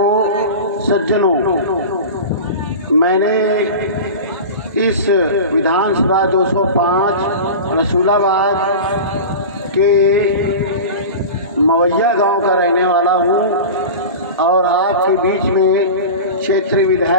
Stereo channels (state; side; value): inverted; both; correlation -0.30